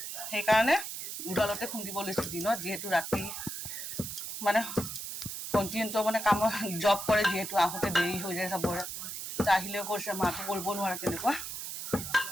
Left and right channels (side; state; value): right; noise; hiss, 7 dB below the sound